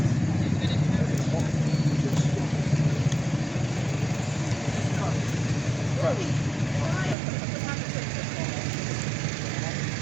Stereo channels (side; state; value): left; drops out; at 7.2 s